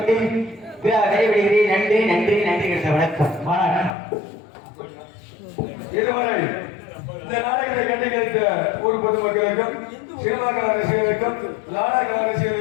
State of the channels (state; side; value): drops out; right; at 4.0 s